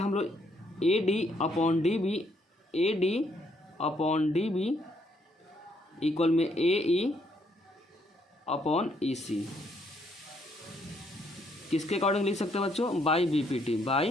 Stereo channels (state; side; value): normal; both; correlation 0.71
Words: लोग AD अपॉन DB इक्वल में AE अपॉन EC किसके अकॉर्डिंग लिख सकते हैं बच्चों? By